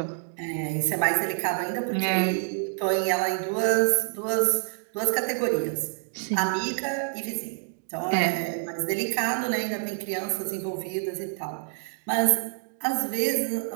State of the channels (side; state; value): left; silent; 60 dB below the other